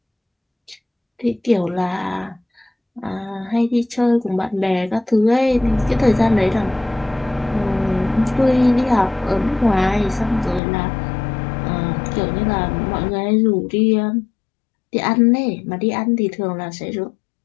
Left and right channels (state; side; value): drops out; right; at 10.6 s